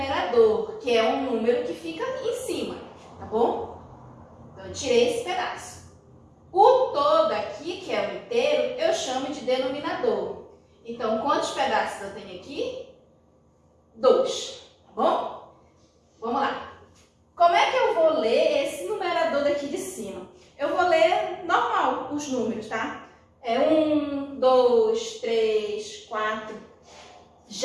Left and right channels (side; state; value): both; identical; correlation 1.00